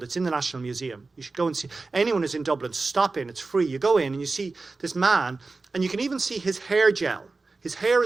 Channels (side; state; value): left; quieter; 3.7 dB